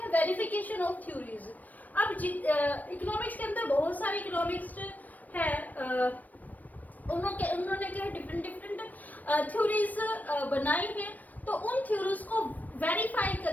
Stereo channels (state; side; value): late; right; 0.081 ms